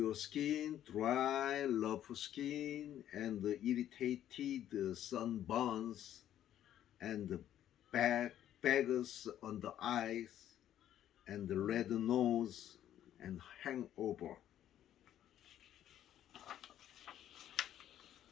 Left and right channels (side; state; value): right; quieter; 11.4 dB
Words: skin dry, rough skin, and the irritated sunburns, and the bags on the eyes, and the red nose, and hangover.